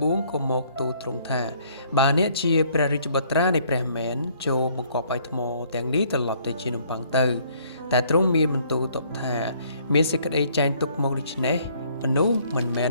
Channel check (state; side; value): inverted; both; correlation -0.62